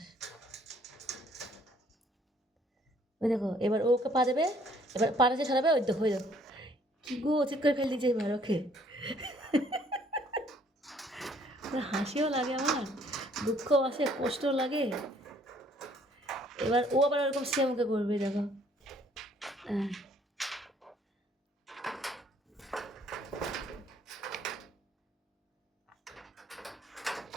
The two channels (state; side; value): normal; both; correlation 0.62